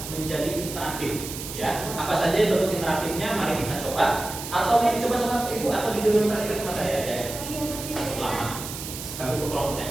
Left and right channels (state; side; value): noise; right; hiss, 9 dB below the sound